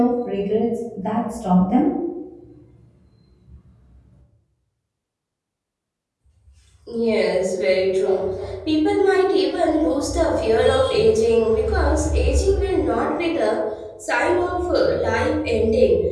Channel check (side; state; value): both; identical; correlation 1.00